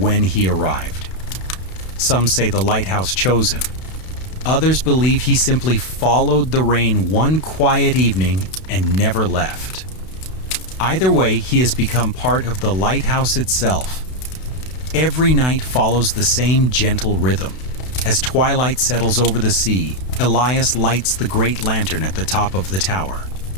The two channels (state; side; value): late; right; 32 ms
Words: he arrived. Some say the lighthouse chose him. Others believe he simply followed the rain one quiet evening and never left. Either way, he has become part of the lighthouse itself. Every night follows the same gentle rhythm. As twilight settles over the sea, Elias lights the great lantern at the top of the tower.